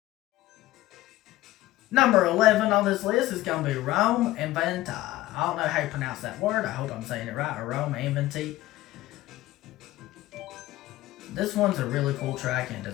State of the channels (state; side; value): quieter; right; 16.5 dB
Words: Number 11 on this list is going to be Rome Inventi. I don't know how you pronounce that word. I hope I'm saying it right. Rome Inventi. This one's a really cool track and